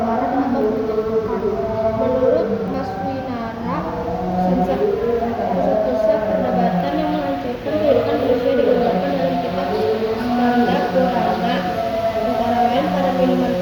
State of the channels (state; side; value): identical; both; correlation 1.00